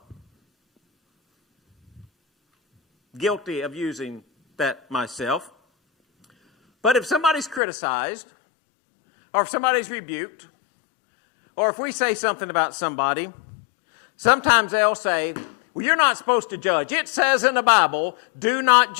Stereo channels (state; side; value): drops out; right; at 7.6 s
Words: guilty of using that myself. But if somebody's criticized, or if somebody's rebuked, or if we say something about somebody, sometimes they'll say, well, you're not supposed to judge. It says in the Bible, do not